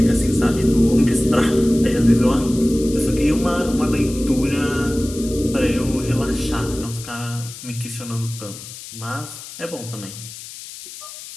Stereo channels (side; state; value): left; noise; hiss, 14 dB below the sound